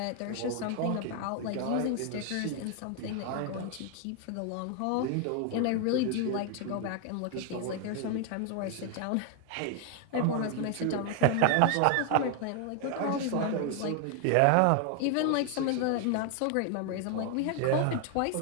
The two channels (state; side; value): different; both; correlation 0.00